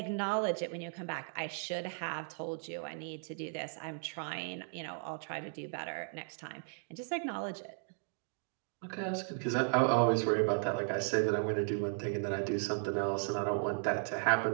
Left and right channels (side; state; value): left; silent; 54 dB below the other